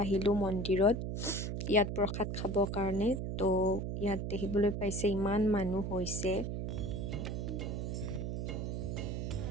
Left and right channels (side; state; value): right; noise; hum, 3 dB below the sound